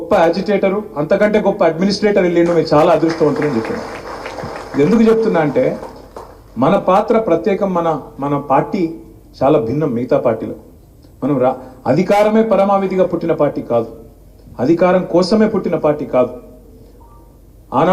యాజిటేటరు, అంతకంటే గొప్ప అడ్మినిస్ట్రేటర్ వెళ్ళిండు, మీరు చాలా అదృష్టవంతులు అని చెప్పాను. ఎందుకు చెప్తున్నా అంటే, మన పాత్ర ప్రత్యేకం. మన పార్టీ చాలా భిన్నం మిగతా పార్టీలో. మనం అధికారమే పరమావధిగా పుట్టిన పార్టీ కాదు, అధికారం కోసమే పుట్టిన పార్టీ కాదు.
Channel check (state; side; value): identical; both; correlation 1.00